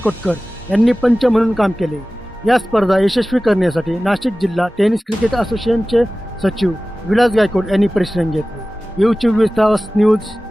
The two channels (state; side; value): normal; both; correlation 0.97